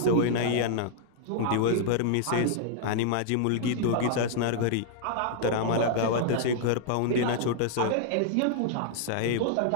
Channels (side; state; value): both; different; correlation -0.01